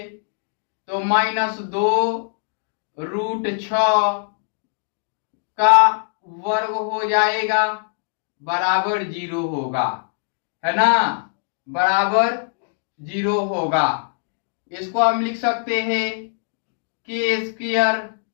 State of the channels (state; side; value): silent; right; 64 dB below the other